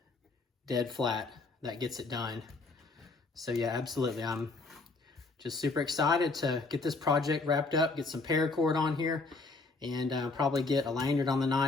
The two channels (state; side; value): quieter; right; 3.6 dB